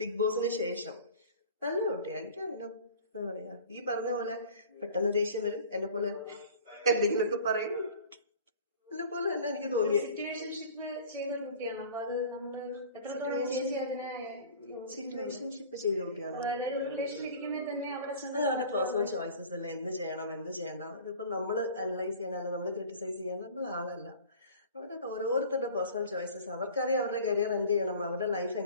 ബിഗ് ബോസിന് ശേഷം. നല്ല കുട്ടിയാണ്, എനിക്കറിയാം. എന്താ പറയാ, ഈ പറഞ്ഞ പോലെ പെട്ടെന്ന് ദേഷ്യം വരും, എന്നെ പോലെ എന്തെങ്കിലുമൊക്കെ പറയും, എന്നെ പോലെ തന്നെ എനിക്ക് തോന്നി. സിറ്റുവേഷൻഷിപ്പ് ചെയ്ത കുട്ടിയാണ്. അവരുടെ പേഴ്സണൽ ചോയ്സസ് അല്ല, എന്ത് ചെയ്യണം എന്ത് ചെയ്യണ്ട. അതിപ്പോ നമ്മള് അനലൈസ് ചെയ്യാനല്ല, നമ്മള് ക്രിട്ടിസൈസ് ചെയ്യാനുള്ള ആളല്ല. അവരുടെ ഓരോരുത്തരുടെ പേഴ്സണൽ ചോയ്സസ്. അവർക്കറിയാം അവരുടെ കരിയർ എന്ത് ചെയ്യണം, അവരുടെ ലൈഫ്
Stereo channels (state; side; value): inverted; both; correlation -0.43